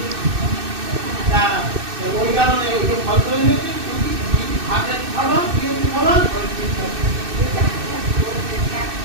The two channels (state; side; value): late; left; 2.6 ms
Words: ওই কারণে ওই ফল করে নিয়েছি, হাতে খাবা, খাবা,